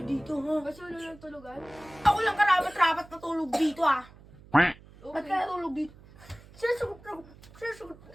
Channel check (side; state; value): right; noise; hum, 22 dB below the sound